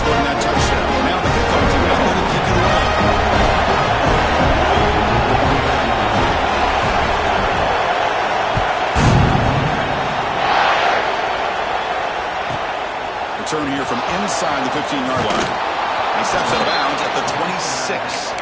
that touchdown. Now the kickoff team out there to kick it away. Return here from inside the 15-yard line. He steps out of bounds at the 26.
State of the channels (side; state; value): both; identical; correlation 1.00